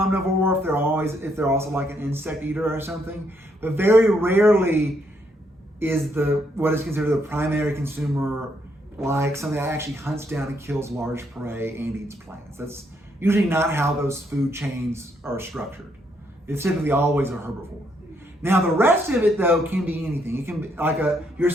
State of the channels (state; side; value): normal; both; correlation 0.73